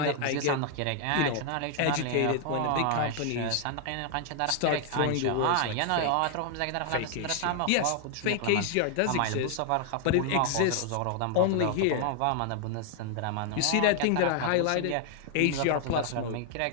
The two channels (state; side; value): different; both; correlation 0.00